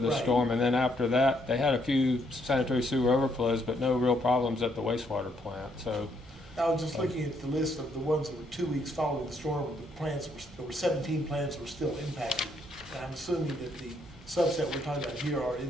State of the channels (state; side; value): normal; both; correlation 0.72